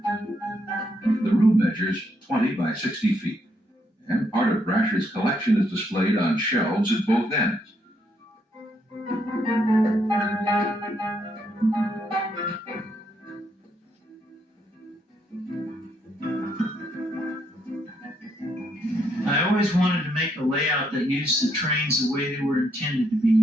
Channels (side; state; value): both; normal; correlation 0.75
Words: The room measures 20 by 60 feet, and part of Brasher's collection is displayed on shelves at both ends. I always wanted to make a layout that used the trains the way they were intended to be